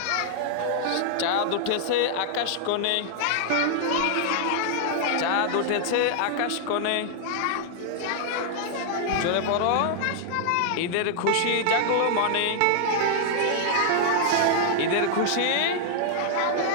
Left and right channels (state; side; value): different; both; correlation -0.01